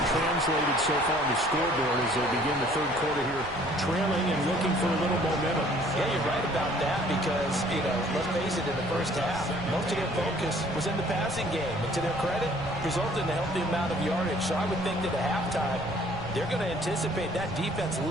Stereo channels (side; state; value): right; noise; rumble, 15 dB below the sound